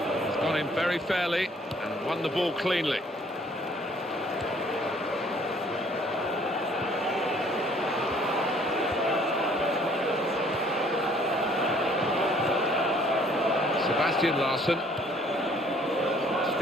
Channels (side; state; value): both; normal; correlation 0.59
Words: very fairly and won the ball cleanly. Sebastian Larsson.